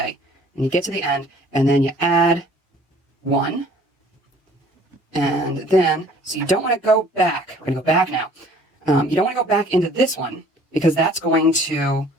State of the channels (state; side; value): normal; both; correlation 0.54